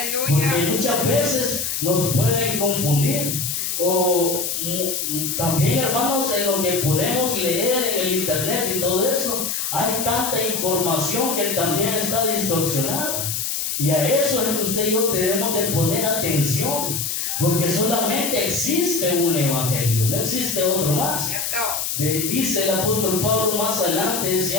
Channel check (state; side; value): noise; left; hiss, 2 dB below the sound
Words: Porque muchas veces nos pueden confundir. O también, hermanos, en lo que podemos leer en el internet y todo eso, hay tanta información que también está distorsionada. Y a eso es que usted y yo debemos de poner atención. Porque solamente existe un evangelio, no existe otro más. Dice el apóstol Pablo más adelante,